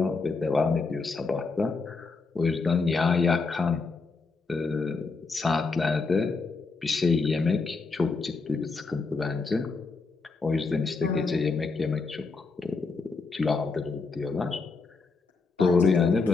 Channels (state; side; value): quieter; right; 4.2 dB